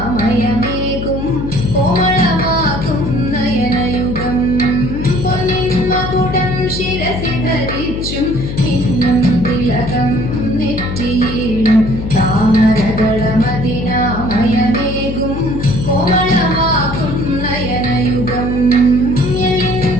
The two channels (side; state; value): left; noise; hum, 6 dB below the sound